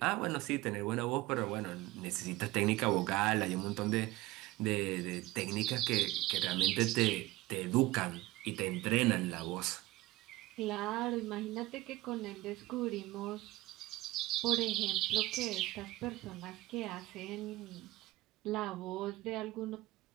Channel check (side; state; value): left; quieter; 18.8 dB